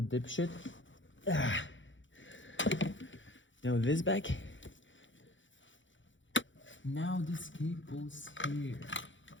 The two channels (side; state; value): right; late; 0.55 ms